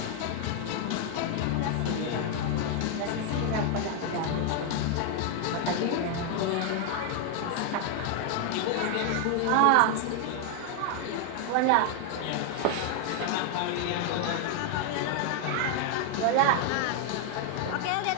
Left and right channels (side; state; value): both; different; correlation 0.00